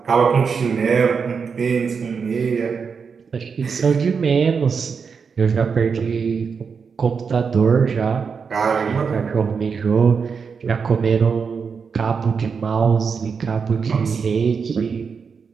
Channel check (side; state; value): left; quieter; 5.8 dB